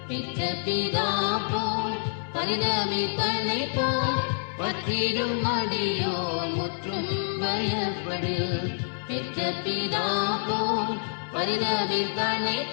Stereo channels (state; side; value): silent; right; digital silence